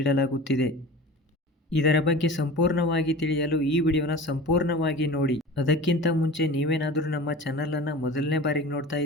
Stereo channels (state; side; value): normal; both; correlation 0.37